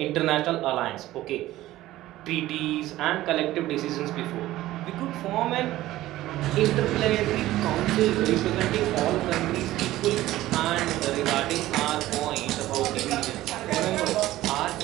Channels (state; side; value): quieter; left; 15.7 dB